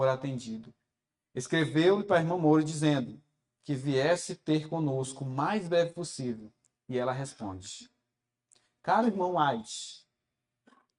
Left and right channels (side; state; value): both; identical; correlation 1.00